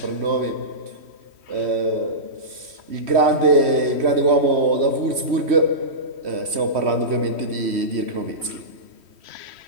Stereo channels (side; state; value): left; late; 3.1 ms